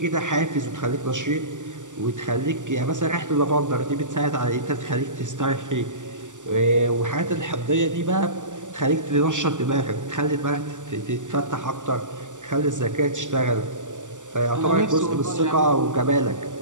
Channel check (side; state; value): left; late; 0.86 ms